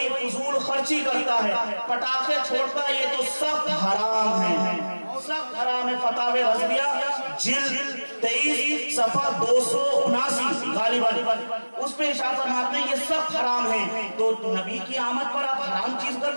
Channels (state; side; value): inverted; both; correlation -1.00